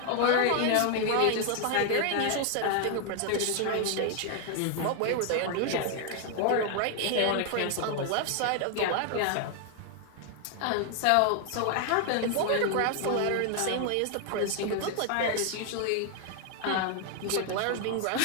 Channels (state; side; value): different; both; correlation 0.00